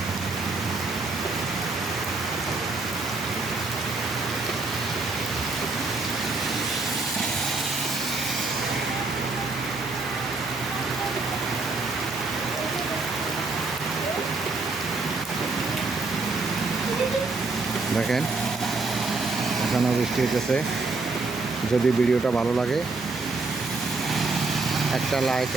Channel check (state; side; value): quieter; left; 3.7 dB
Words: দেখেন এখনো বৃষ্টি হইতেছে। যদি ভিডিওটা ভালো লাগে একটা লাইক,